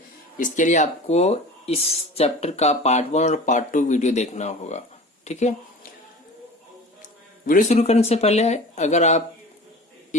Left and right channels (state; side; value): normal; both; correlation 0.38